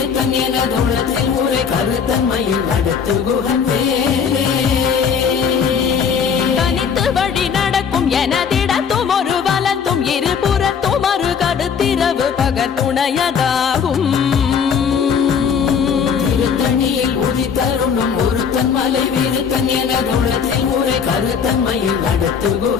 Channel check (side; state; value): right; quieter; 6.8 dB